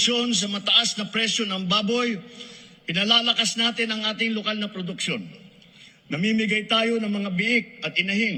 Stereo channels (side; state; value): both; identical; correlation 1.00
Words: sa mataas na presyo ng baboy, pinalalakas natin ang ating lokal na produksyon. Namimigay tayo ng mga biik at